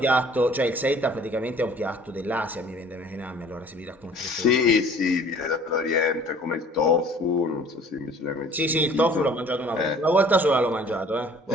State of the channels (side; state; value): both; normal; correlation 0.51